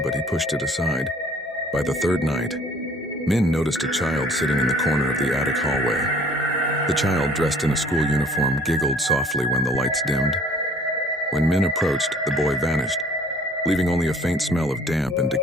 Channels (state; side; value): normal; both; correlation 0.54